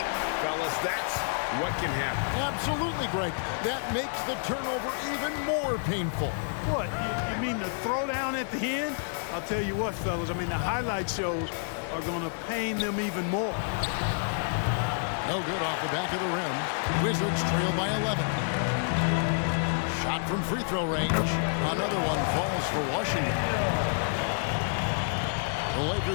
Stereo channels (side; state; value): right; silent; digital silence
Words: fellas, that's what can happen. Absolutely, Greg. That makes the turnover even more painful. What, you mean the throwdown at the end? I'll tell you what, fellas, I mean, the highlight shows are going to pain them even more. No good off the back of the rim. Wizards trail by 11. Shot from free throw range. Another one falls for Washington. The